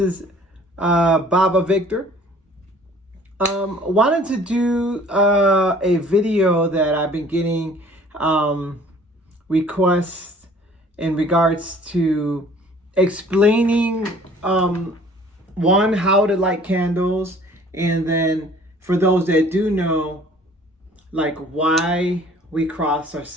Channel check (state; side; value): normal; both; correlation 0.53